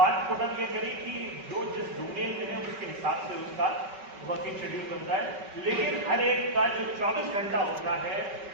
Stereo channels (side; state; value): left; late; 5.2 ms